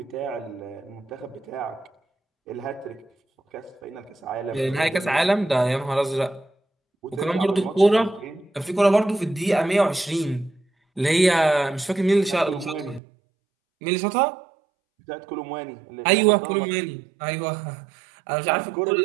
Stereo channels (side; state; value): left; drops out; at 13.0 s